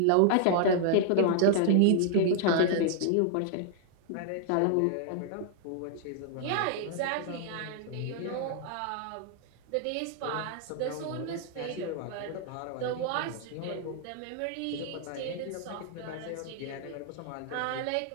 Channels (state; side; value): different; both; correlation 0.00